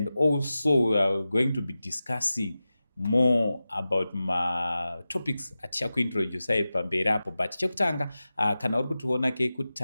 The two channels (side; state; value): both; inverted; correlation -0.94